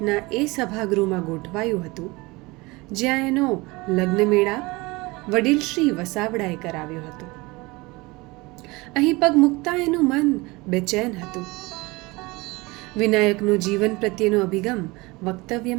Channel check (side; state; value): left; quieter; 23.4 dB